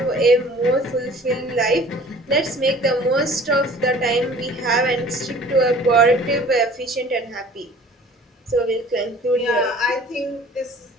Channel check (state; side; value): normal; both; correlation 0.48